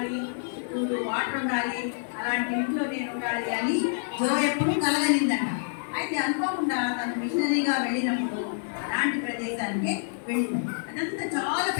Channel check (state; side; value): silent; right; 60 dB below the other